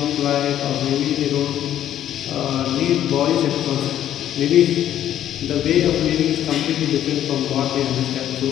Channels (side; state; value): right; quieter; 11.3 dB